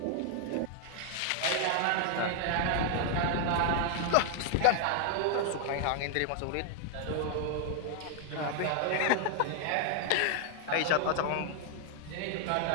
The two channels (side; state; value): both; different; correlation 0.00